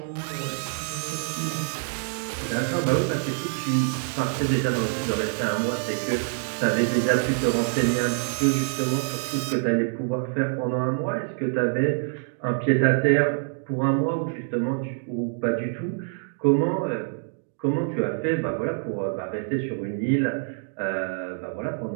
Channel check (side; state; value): left; silent; digital silence